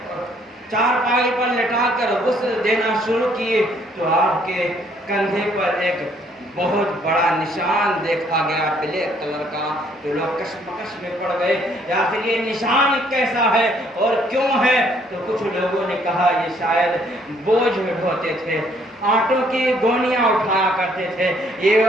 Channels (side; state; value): both; normal; correlation 0.65